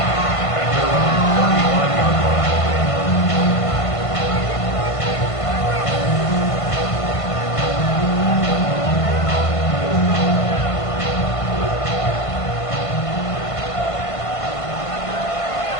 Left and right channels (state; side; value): late; right; 1.5 ms